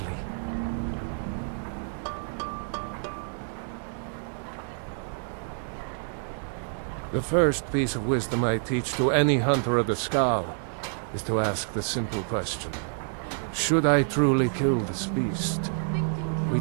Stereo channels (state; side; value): silent; left; 59 dB below the other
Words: The first piece of wisdom I teach to any hunter of the Skal is to ask the simple question: should I truly kill this beast? We